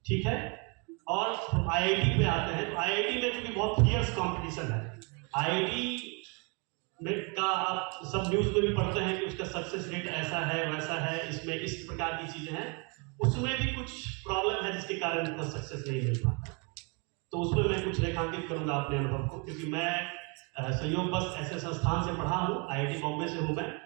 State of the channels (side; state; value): left; quieter; 33.0 dB